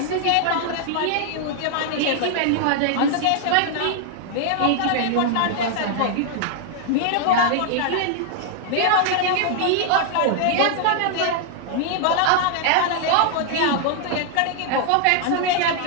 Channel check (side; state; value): both; different; correlation 0.00